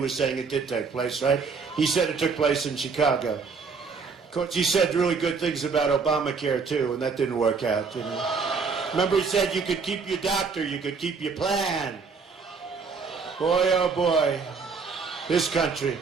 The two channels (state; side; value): quieter; left; 5.1 dB